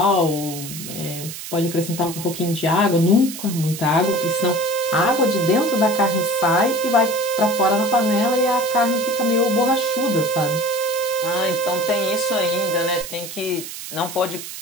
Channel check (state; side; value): noise; right; hiss, 10 dB below the sound